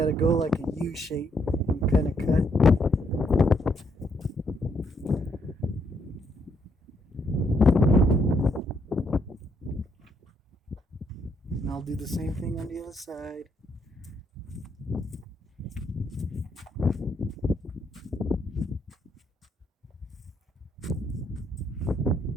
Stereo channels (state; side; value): normal; both; correlation 0.73